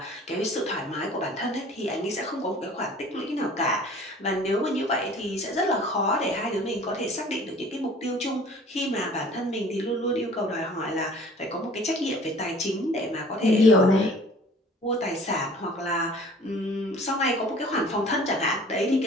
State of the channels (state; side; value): normal; both; correlation 0.49